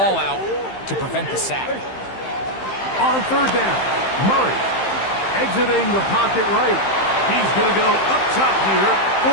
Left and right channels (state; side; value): late; right; 15 ms